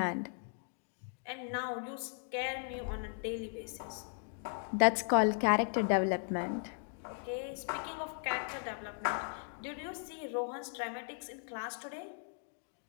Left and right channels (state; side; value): silent; right; 53 dB below the other